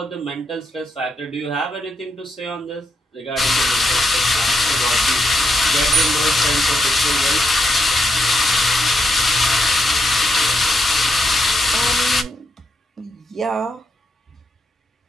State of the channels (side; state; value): both; normal; correlation 0.80